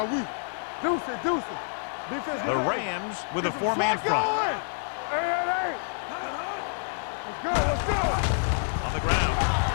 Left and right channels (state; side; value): silent; right; digital silence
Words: Deuce it, deuce it. Defense, The Rams with a 4-man front. Let's go. Let's go, let's go. On the ground.